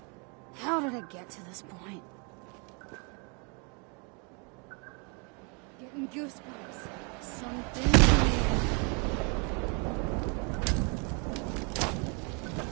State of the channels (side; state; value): left; quieter; 34.7 dB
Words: How did I get to this point? Getting goosebumps. Something weird.